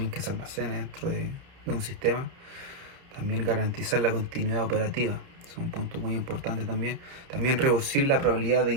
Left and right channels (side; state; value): left; late; 30 ms